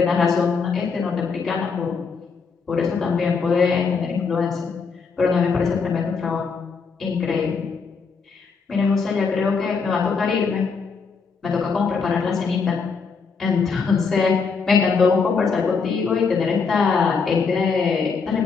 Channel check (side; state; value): right; quieter; 5.2 dB